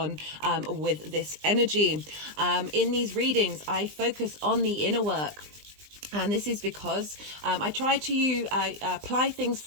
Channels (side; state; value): left; late; 20 ms